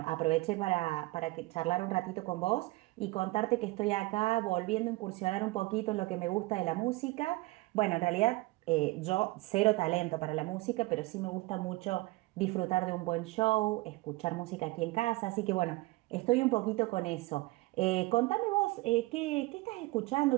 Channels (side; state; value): left; quieter; 21.1 dB